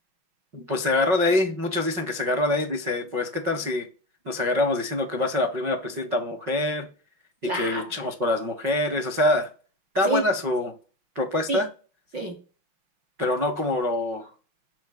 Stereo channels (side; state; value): left; late; 5.5 ms